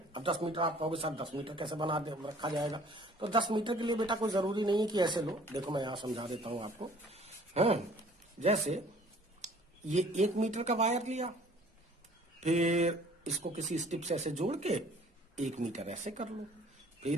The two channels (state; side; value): normal; both; correlation 0.53